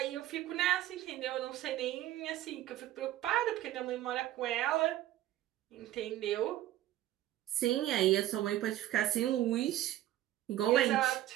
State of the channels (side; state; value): left; quieter; 13.9 dB